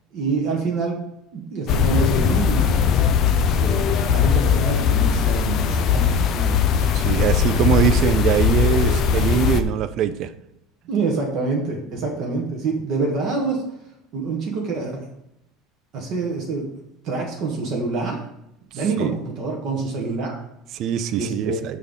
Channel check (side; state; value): both; normal; correlation 0.34